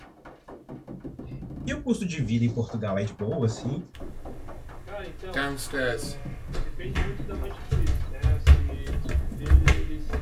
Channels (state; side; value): identical; both; correlation 1.00